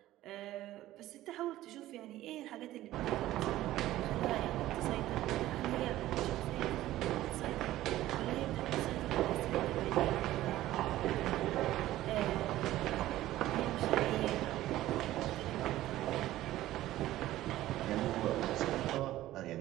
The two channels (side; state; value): left; quieter; 15.0 dB